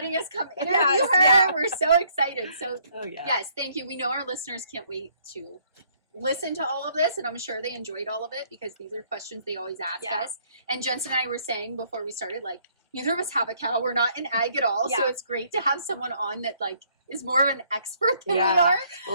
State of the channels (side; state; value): both; inverted; correlation -0.65